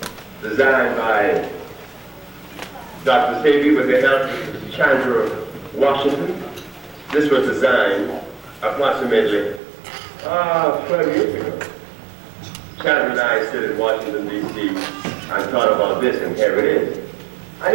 designed by Dr. Sebi with the help of Chandra Washington. This was designed approximately 12 years ago. Chandra and I sit in Washington, D.C. and thought about this, and here it is.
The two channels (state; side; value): drops out; left; at 9.6 s